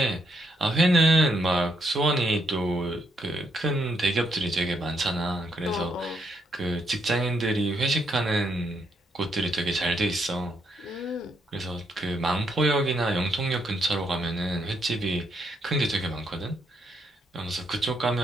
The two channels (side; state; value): both; normal; correlation 0.76